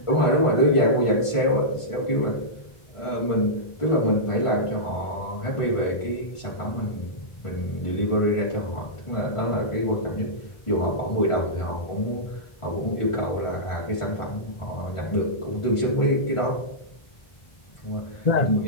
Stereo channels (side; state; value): right; late; 1.5 ms